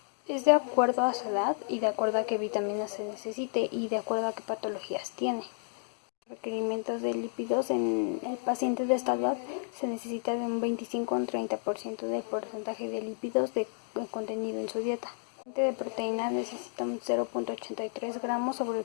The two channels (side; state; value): right; silent; 57 dB below the other